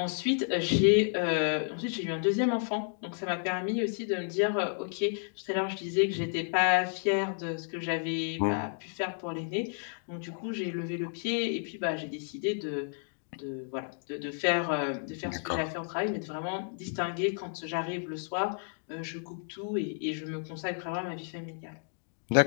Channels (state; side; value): silent; right; 57 dB below the other